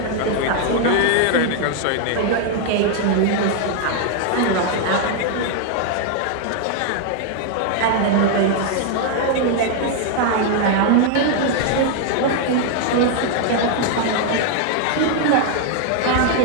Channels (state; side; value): different; both; correlation 0.00